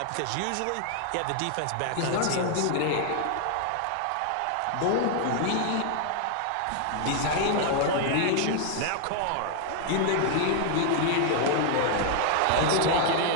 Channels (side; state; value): both; different; correlation 0.00